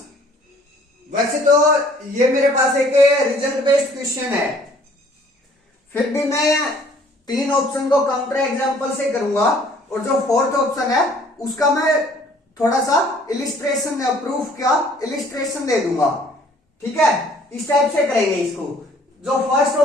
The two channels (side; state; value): both; normal; correlation 0.57